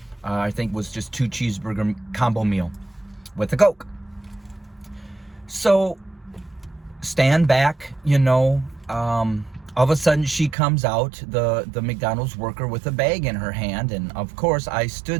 I think it was just 2 cheeseburger combo meal with a Coke. So stand back, all of a sudden she comes out, the McDonald's worker, with a bag in her hand. And of course I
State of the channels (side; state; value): left; drops out; at 10.6 s